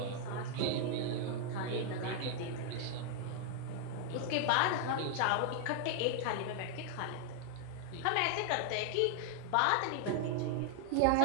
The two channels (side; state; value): both; different; correlation 0.00